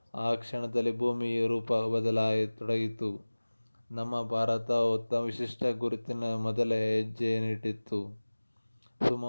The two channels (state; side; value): inverted; both; correlation -1.00